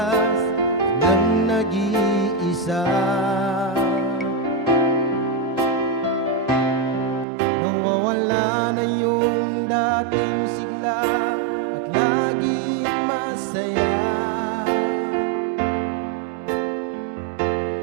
nang nag-iisa, nawawala na yung dating sigla at laging masaya.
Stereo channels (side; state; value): left; drops out; at 7.2 s